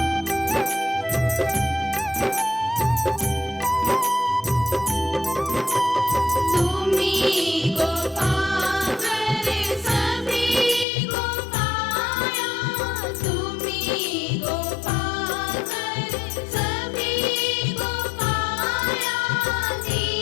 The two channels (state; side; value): drops out; right; at 10.9 s